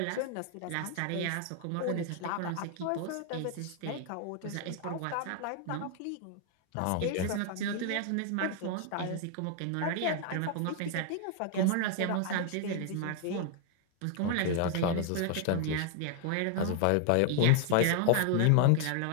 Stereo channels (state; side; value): different; both; correlation 0.00